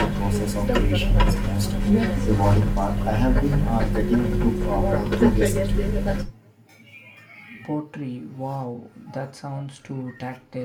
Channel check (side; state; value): both; identical; correlation 1.00